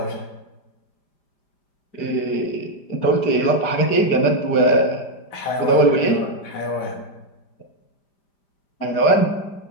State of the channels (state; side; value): late; right; 5.0 ms